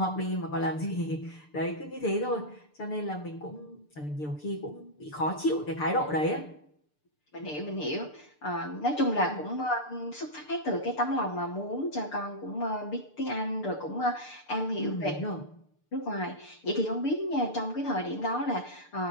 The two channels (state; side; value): late; right; 6.7 ms